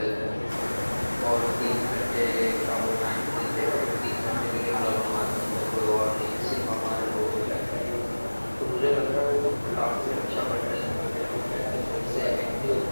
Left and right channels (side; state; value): both; inverted; correlation -1.00